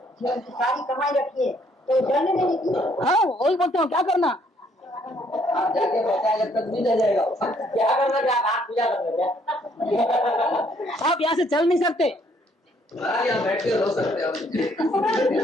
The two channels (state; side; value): normal; both; correlation 0.66